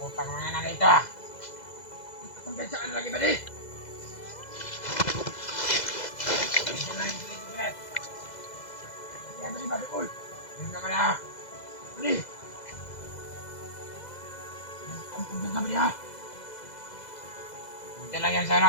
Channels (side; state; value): right; late; 2.0 ms